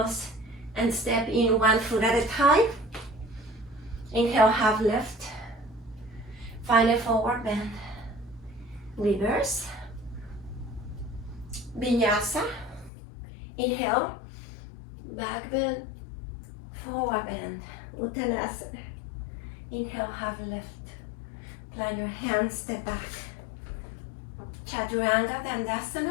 and step in 1 foot at a time. Inhale, half lift. Find a forward bend. Reverse. Vinyasa. Inhale, back bend, forward bend. Uttanasana. Inhale, half lift. Plant your hands, step back. Chaturanga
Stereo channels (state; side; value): drops out; right; at 12.9 s